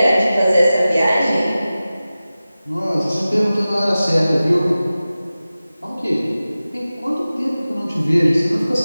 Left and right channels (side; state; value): both; inverted; correlation -0.96